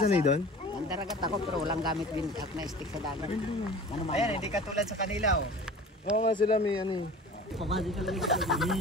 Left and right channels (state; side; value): normal; both; correlation 0.41